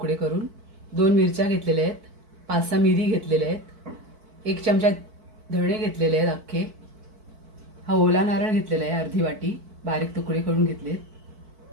करून, 2 मिरच्या घेतलेल्या आहेत, 5-6 मिरी घेतलेल्या आहेत, 1 चमचा धणे घेतलेले आहेत अख्खे। हा ओला नारळ घेतलेला आहे अर्धी वाटी, बारीक तुकडे करून घेतलेत।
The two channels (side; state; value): left; late; 4.5 ms